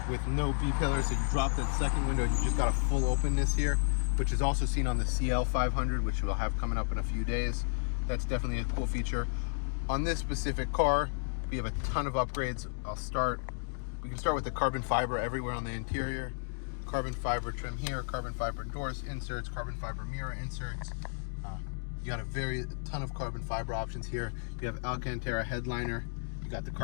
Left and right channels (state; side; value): silent; right; digital silence